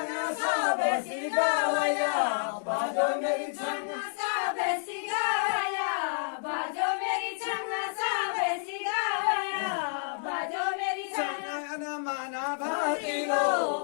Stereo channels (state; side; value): silent; right; digital silence